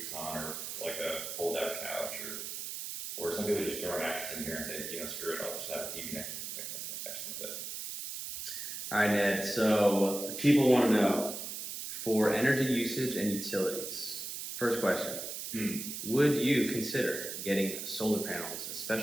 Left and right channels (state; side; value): noise; right; hiss, 6 dB below the sound